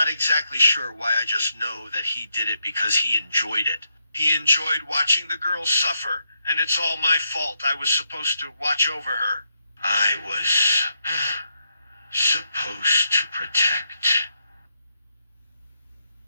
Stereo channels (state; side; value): inverted; both; correlation -0.79